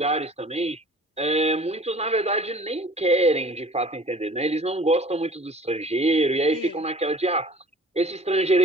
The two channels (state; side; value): normal; both; correlation 0.47